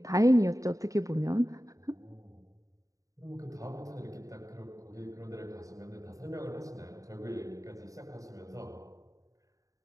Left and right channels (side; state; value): left; late; 0.16 ms